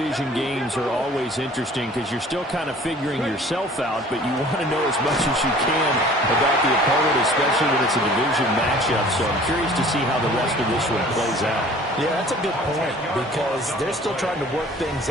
games are always interesting because you're still kind of figuring yourself out, but you want to know as much as you can about the opponent, especially when it's a division matchup. So I'm curious to see how the rest of this one plays out. Yeah, that's a good point because they're still trying to work things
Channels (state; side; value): normal; both; correlation 0.49